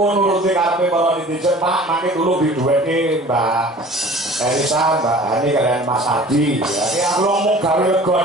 karepe para netizen, Pak, mangke dulu diduweke Mbak Elisa, Mbak Hani kalian Mas Adi. Ya, iki aku ngomong gawe lega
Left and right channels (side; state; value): both; normal; correlation 0.45